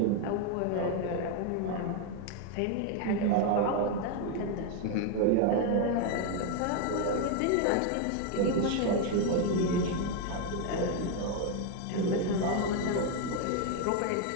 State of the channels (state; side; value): different; both; correlation 0.01